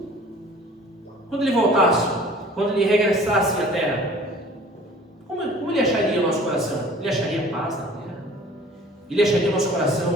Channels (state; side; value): normal; both; correlation 0.48